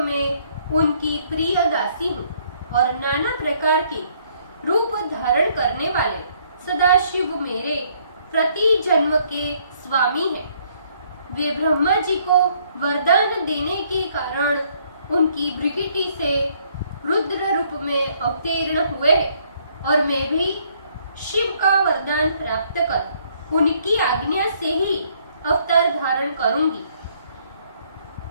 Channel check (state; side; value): inverted; both; correlation -0.66